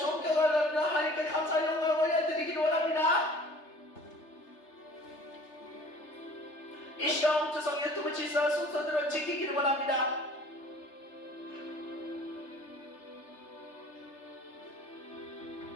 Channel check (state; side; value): late; right; 3.3 ms